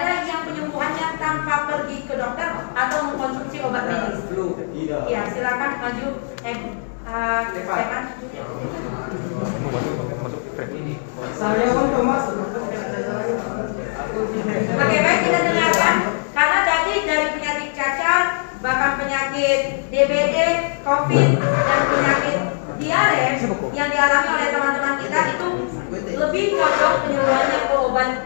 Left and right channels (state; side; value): silent; right; digital silence